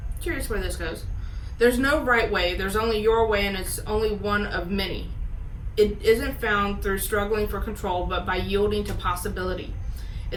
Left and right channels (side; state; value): both; identical; correlation 1.00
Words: Curious where this goes. There's no right way. There's only your way, and it's only one of many. It isn't found through struggling for control, but by yielding to possibility.